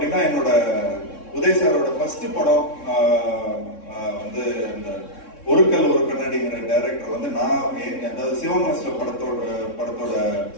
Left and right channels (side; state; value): right; late; 3.6 ms